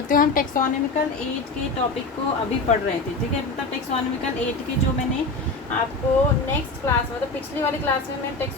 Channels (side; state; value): right; quieter; 3.3 dB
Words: हूँ। हम टेक्सोनॉमिकल एज के टॉपिक को अभी पढ़ रहे थे। ठीक है, मतलब टेक्सोनॉमिकल एज के जो मैंने आपको नेक्स्ट क्लास मतलब पिछली वाली क्लास में मैं